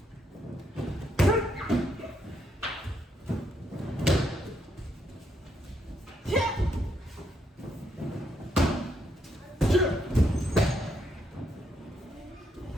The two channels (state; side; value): normal; both; correlation 0.76